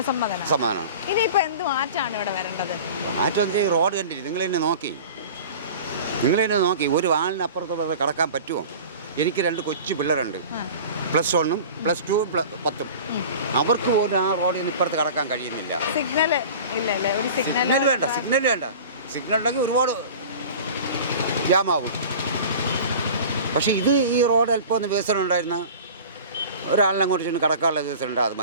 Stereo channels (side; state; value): both; inverted; correlation -0.38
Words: സമ്മതനാണ്. ഇനിയിപ്പോ എന്ത് മാറ്റമാണ് ഇവിടെ വരേണ്ടത്? മാറ്റം റോഡ് കണ്ടിട്ട് നിങ്ങൾ തന്നെ നോക്കി ഒരു വാളിനപ്പുറത്തോടെ കടക്കാൻ പറ്റുമോ? എനിക്ക് 2 കൊച്ചു പിള്ളേരുണ്ട്, +1, +2, +10. അവർക്ക് പോലും ആ റോഡിൽ നിന്ന് ഇപ്പുറത്ത് കടക്കാൻ കഴിയുന്നില്ല. സിഗ്നൽ വേണ്ട. സിഗ്നൽ ഉണ്ടെങ്കിൽ ഒരുപാട് ജാമാവും. പക്ഷേ ഈ റോഡ് അല്പം ഒന്ന് വികസനം ഉണ്ടായിരുന്ന ഒരാളിനെ അങ്ങോട്ട് ചെന്ന് കടക്കാനുള്ള വികസനം ഉണ്ട്, അത്